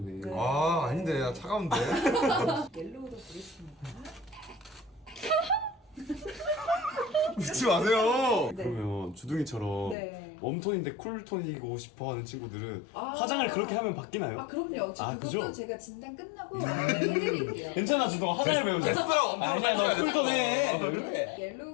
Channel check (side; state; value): right; drops out; at 10.0 s